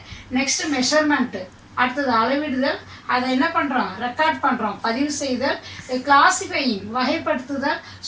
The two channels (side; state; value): both; identical; correlation 1.00